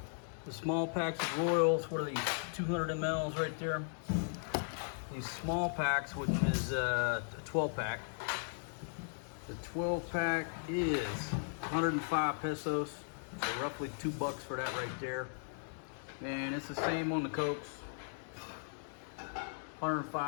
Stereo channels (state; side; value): silent; right; digital silence